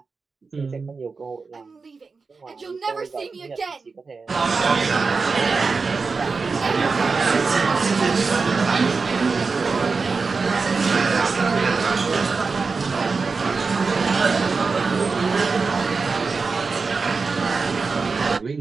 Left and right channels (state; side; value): quieter; left; 4.5 dB